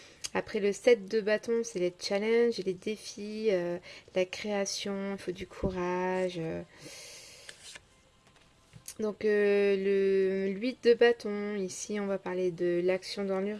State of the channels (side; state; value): both; identical; correlation 1.00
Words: Après le 7 de bâton, c'est les challenges, les défis, la création, il faut du courage. Donc le 8 de bâton, ici on va parler de l'action dans